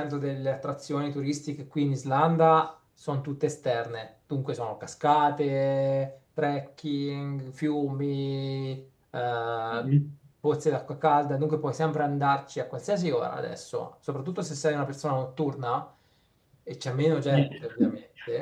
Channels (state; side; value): identical; both; correlation 1.00